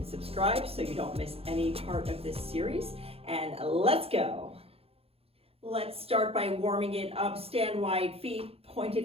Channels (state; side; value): late; left; 0.28 ms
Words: subscribe so you don't miss any part of this series, and let's go. Let's start by warming it up. Stand wide, feet